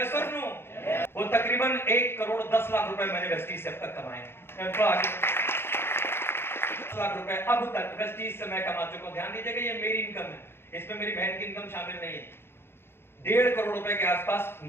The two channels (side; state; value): right; late; 0.11 ms